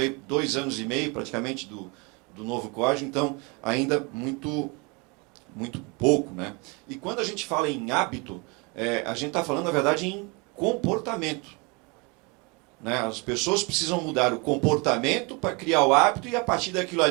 2 anos e meio, praticamente, do novo código, então ainda muito pouco. Né? E quando a gente fala em hábito, a gente está falando, na verdade, em comportamento. Né? As pessoas precisam mudar o comportamento para criar o hábito e, a partir daquilo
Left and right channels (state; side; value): quieter; left; 29.6 dB